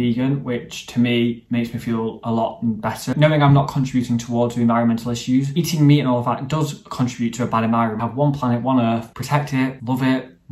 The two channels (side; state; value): both; identical; correlation 1.00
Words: which to me makes me feel a lot better. Knowing I'm not contributing towards the environmental issues, eating meat and all of that does contribute to a bad environment. Have one planet, one earth, protect it, love it,